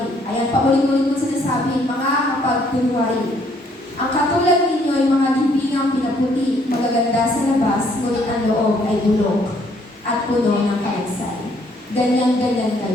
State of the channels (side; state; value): both; normal; correlation 0.66